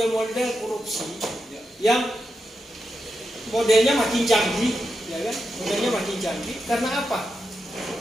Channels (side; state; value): both; normal; correlation 0.87